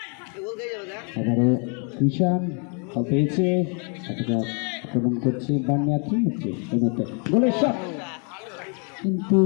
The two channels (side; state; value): right; quieter; 38.1 dB